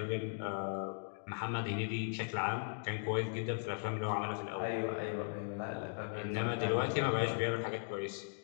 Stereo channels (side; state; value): right; silent; digital silence